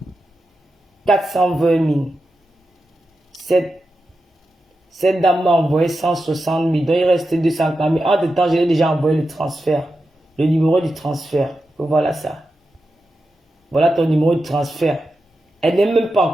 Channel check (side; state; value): both; normal; correlation 0.90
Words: 000. Cette dame m'a envoyé 160 000. Donc il restait 240 000. Entre temps, j'ai déjà envoyé le transfert. Le numéro du transfert. Voilà ça. Voilà ton numéro de transfert. Elle n'est même pas